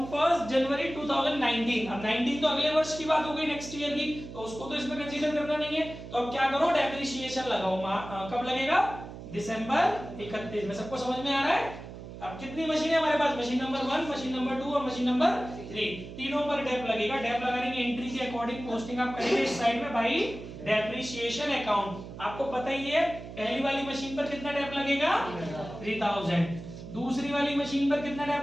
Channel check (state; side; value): noise; right; hum, 12 dB below the sound